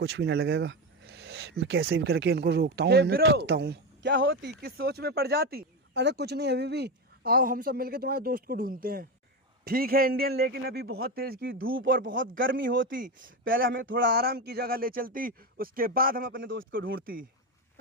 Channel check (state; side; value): normal; both; correlation 0.15